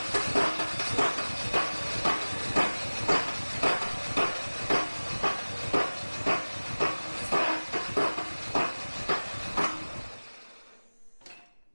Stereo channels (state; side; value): inverted; both; correlation -1.00